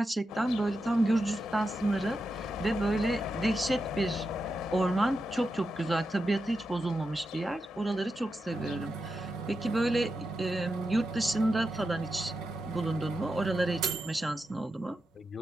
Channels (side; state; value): both; normal; correlation 0.88